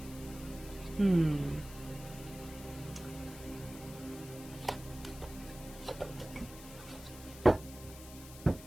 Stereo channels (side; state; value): left; noise; hiss, 16 dB below the sound